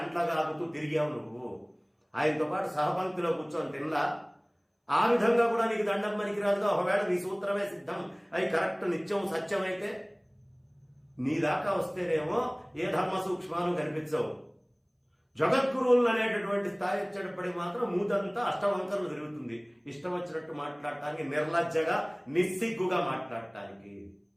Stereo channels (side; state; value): both; identical; correlation 1.00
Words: తిరిగావు నువ్వు. ఆయనతో పాటు సహపంక్తిలో కూర్చొని తినలా. ఆ విధంగా కూడా నీకు దండం పనికిరాదుగా. ఒకవేళ నీ సూత్రమే సిద్ధం అవి కరెక్ట్ నిత్యం సత్యమైతే నీ దాకా వస్తేనేమో ఏ ధర్మ సూక్ష్మాలు కనిపించవు. జగద్గురువులు అనేటటువంటి స్థాయి వచ్చేటప్పటికి మాత్రం మూతంతా అష్టవంకరలు తిరుగుతుంది. ఇష్టం వచ్చినట్టు మాట్లాడటానికి, నిర్లజ్జగా నిస్సిగ్గుగా మాట్లాడటానికి.